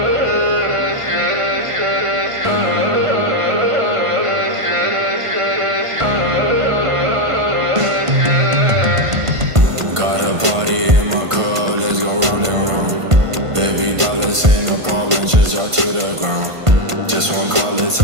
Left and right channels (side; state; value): left; late; 1.5 ms